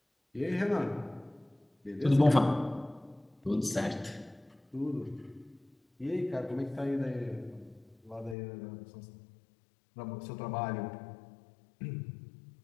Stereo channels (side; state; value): right; drops out; at 8.3 s